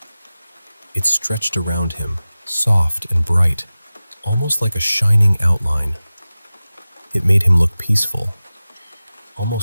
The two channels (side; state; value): both; inverted; correlation -0.96